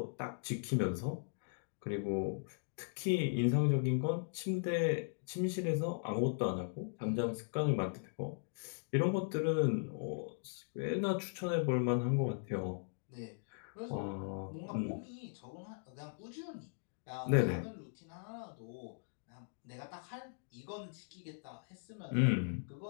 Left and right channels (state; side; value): silent; right; digital silence